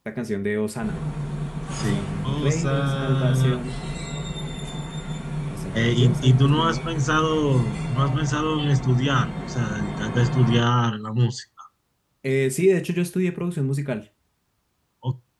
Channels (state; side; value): identical; both; correlation 1.00